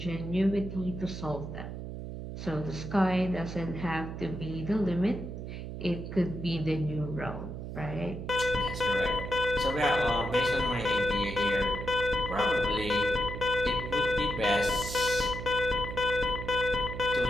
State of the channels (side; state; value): right; noise; hum, 8 dB below the sound